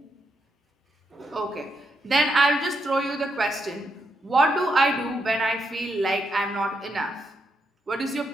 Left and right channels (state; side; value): normal; both; correlation 0.80